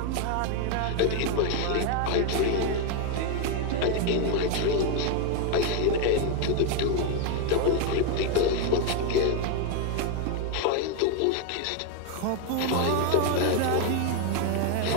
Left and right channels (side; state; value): both; different; correlation 0.01